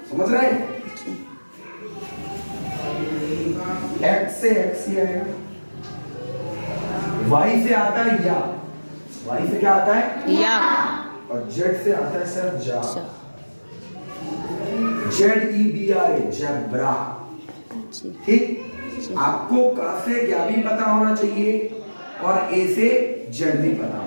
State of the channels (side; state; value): both; inverted; correlation -1.00